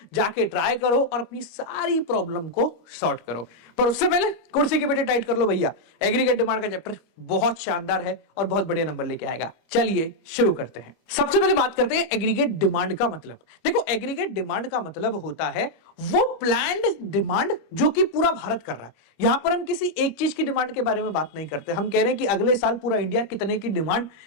जाके ट्राई करो और अपनी सारी प्रॉब्लम को सॉर्ट करो। पर उससे पहले कुर्सी की बेटे टाइट कर लो भैया, एग्रीगेट डिमांड का चैप्टर बहुत शानदार है और बहुत बढ़िया नंबर लेके आएगा। चलिए शुरू करते हैं। सबसे पहले बात करते हैं एग्रीगेट डिमांड का मतलब। देखो, एग्रीगेट डिमांड का मतलब होता है वो प्लान्ड डिमांड जो कि पूरा भारत कर रहा है। यहां पर हम किसी एक चीज की डिमांड के बारे में बात नहीं करते, हम कह रहे हैं कि अगले साल पूरा इंडिया कितने की डिमांड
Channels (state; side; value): late; right; 25 ms